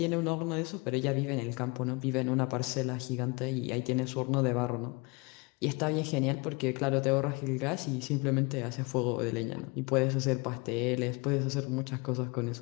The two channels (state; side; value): quieter; right; 28.5 dB